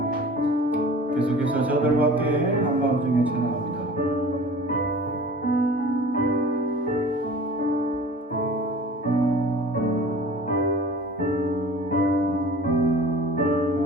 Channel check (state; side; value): normal; both; correlation 0.43